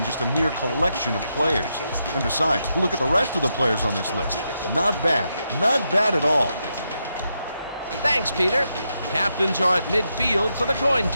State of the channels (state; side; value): inverted; both; correlation -0.83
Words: just a mere collection of players. And besides, look at the rest of the players on this list. Not bad. Not bad at all. Thanks, Peter. Captains are at midfield for the coin